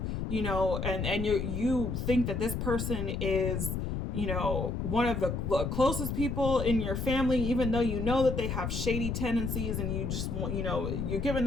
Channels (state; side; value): noise; left; rumble, 2 dB below the sound